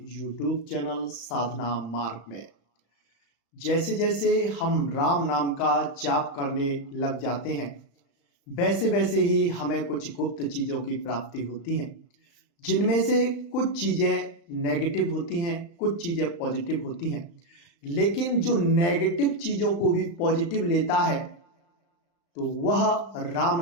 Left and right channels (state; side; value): late; right; 35 ms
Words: YouTube चैनल साधना मार्ग में। जैसे जैसे हम राम नाम का जाप करने लग जाते हैं, वैसे वैसे ही हमें कुछ गुप्त चीज़ों की प्राप्ति होती है, जिनमें से कुछ चीज़ें नेगेटिव होती हैं, कुछ चीज़ें पॉजिटिव होती हैं। लेकिन जो नेगेटिव चीज़ों को भी पॉजिटिव लेता है तो वह राम